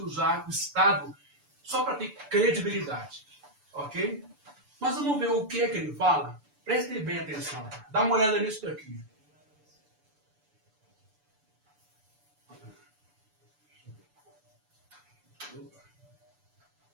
o Estado só para ter credibilidade. Ok? Mas vamos ver o que é que ele fala? Prestem bem atenção. Dá uma olhada nisso daqui.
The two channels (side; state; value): left; late; 6.9 ms